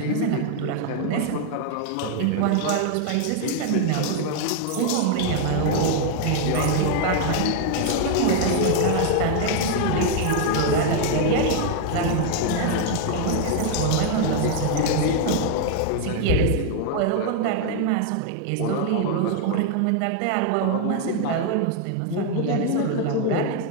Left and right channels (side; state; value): both; different; correlation 0.00